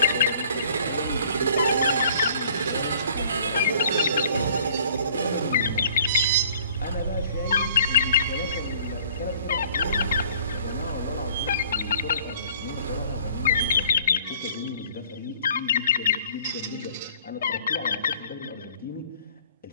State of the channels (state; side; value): inverted; both; correlation -0.53